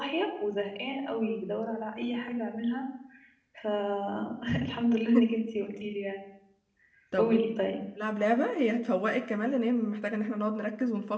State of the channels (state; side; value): identical; both; correlation 1.00